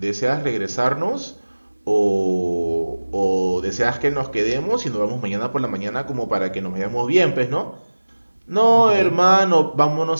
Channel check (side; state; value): both; inverted; correlation -1.00